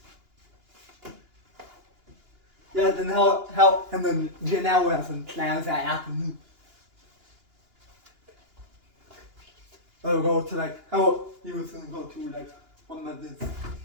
Yeah, then and then Janelle has some plans that afternoon. Go to how he was gonna go to one of his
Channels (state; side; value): late; left; 2.9 ms